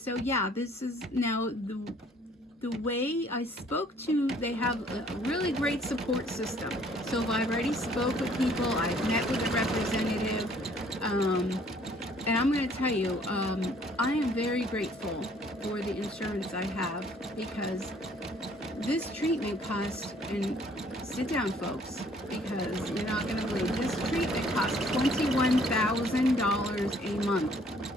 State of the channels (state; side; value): normal; both; correlation 0.60